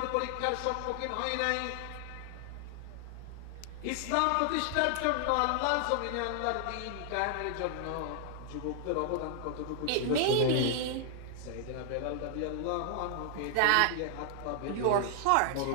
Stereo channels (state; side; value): different; both; correlation 0.00